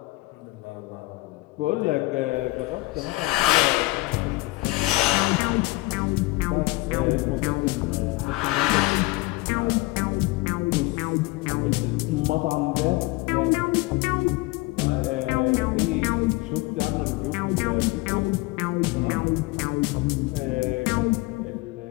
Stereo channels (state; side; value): quieter; right; 21.4 dB